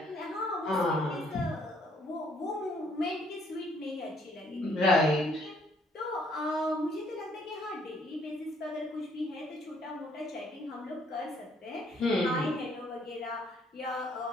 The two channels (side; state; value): both; normal; correlation 0.66